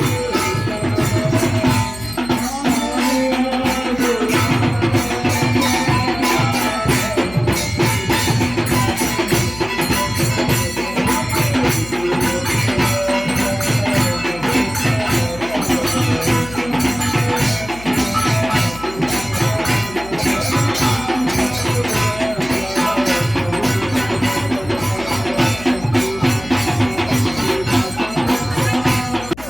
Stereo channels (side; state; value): left; noise; hum, 16 dB below the sound